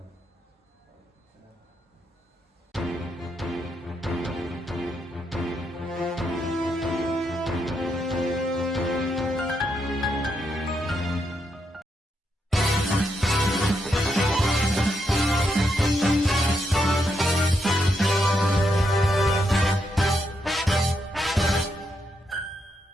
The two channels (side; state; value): both; normal; correlation 0.80